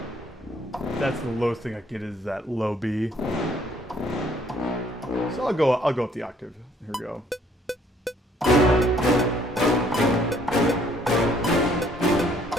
That's the lowest thing I get is that low B. So I'll go up the octave. Here we go.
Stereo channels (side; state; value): both; normal; correlation 0.63